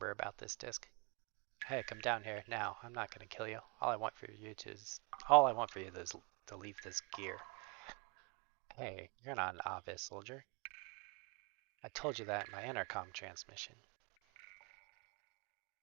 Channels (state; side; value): quieter; left; 31.8 dB